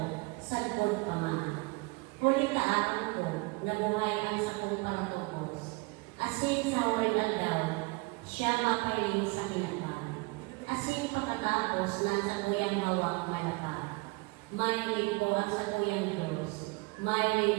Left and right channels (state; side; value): quieter; left; 26.8 dB